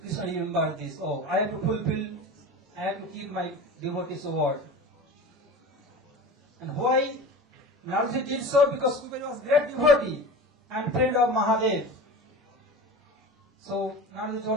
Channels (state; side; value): normal; both; correlation 0.33